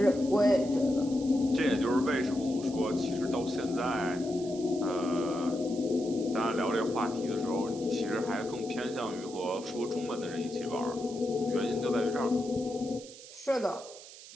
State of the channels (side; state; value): right; noise; hiss, 17 dB below the sound